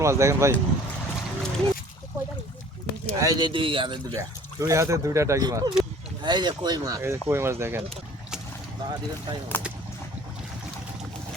মাছ দেখেন ভাই, এই যে দুই হাতে দুটা, দুই হাতে দুইটা টাকি মাছ। এই যে কই মাছ, এই যে কই মাছ দেখেন।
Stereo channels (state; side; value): normal; both; correlation 0.51